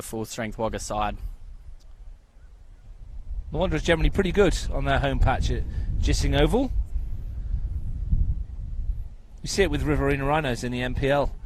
full-strength Wagga side. The Wanderers generally pretty good on their home patch at Gissing Oval. You see it with Riverina Rhinos in the NPL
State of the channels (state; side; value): identical; both; correlation 1.00